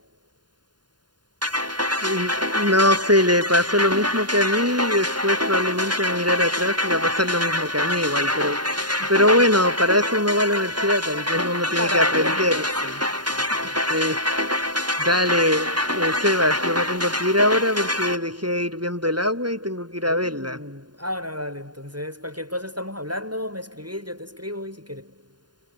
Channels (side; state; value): left; late; 0.70 ms